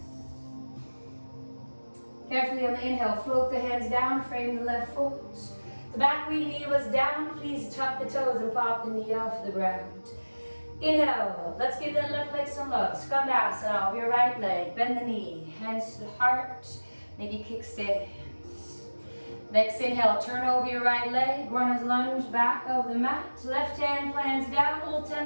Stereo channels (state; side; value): inverted; both; correlation -1.00